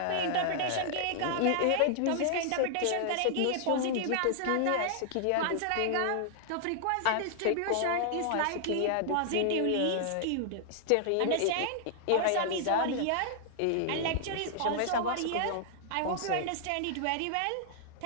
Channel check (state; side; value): different; both; correlation -0.01